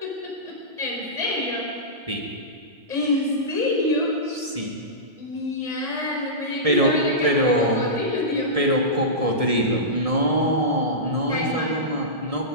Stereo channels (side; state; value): left; late; 1.7 ms